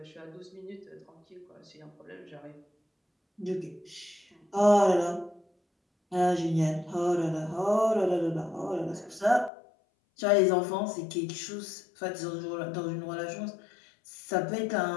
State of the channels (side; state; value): right; drops out; at 9.5 s